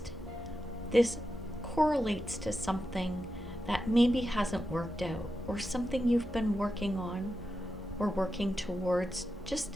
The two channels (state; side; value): normal; both; correlation 0.89